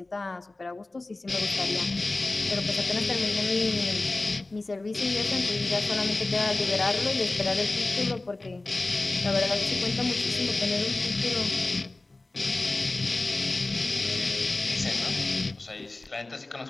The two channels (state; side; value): quieter; right; 3.1 dB